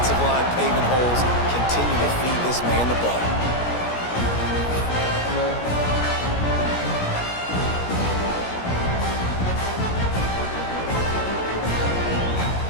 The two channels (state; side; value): late; right; 17 ms